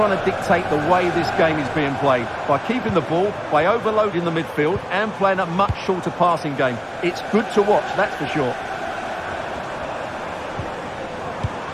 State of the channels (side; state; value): both; identical; correlation 1.00